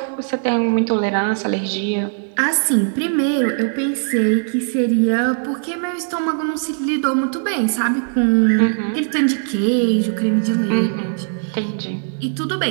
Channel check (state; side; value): silent; left; digital silence